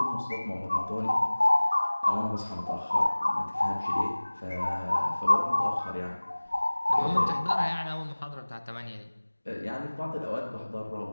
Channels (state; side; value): inverted; both; correlation -1.00